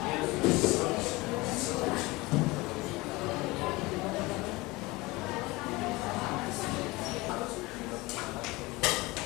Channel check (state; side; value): quieter; right; 22.2 dB